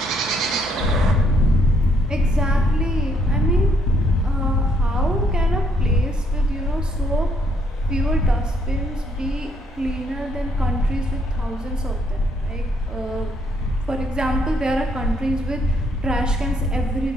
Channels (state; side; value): normal; both; correlation 0.70